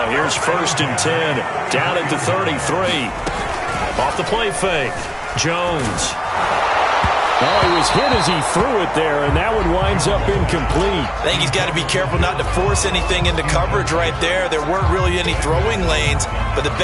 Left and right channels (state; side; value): identical; both; correlation 1.00